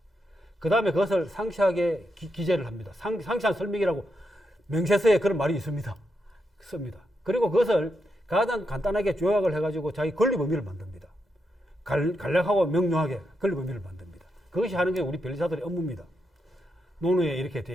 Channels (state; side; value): normal; both; correlation 0.83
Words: 그 다음에 그것을 상세하게 기재를 합니다. 상세한 설명이라고 명세서에 그런 말이 있습니다. 씁니다. 그리고 그것을 가장 간단하게 요약을 해가지고 자기 권리 범위를 만듭니다. 간략하고 명료하게 권리 범위를 만듭니다. 그것이 하는 게 우리 변리사들의 업무입니다. 논어에